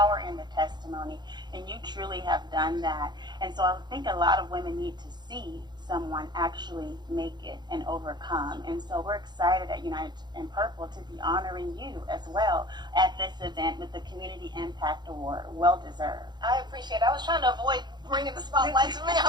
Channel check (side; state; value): left; late; 0.21 ms